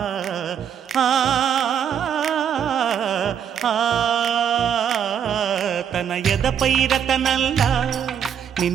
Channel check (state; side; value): quieter; left; 8.5 dB